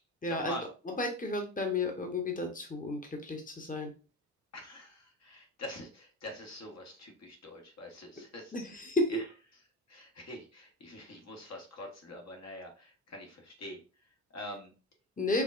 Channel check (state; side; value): normal; both; correlation 0.24